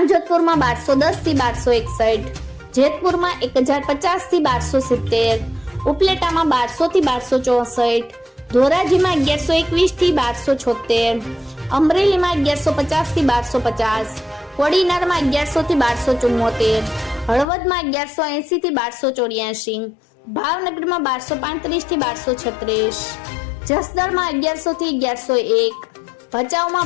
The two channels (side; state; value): right; drops out; at 17.4 s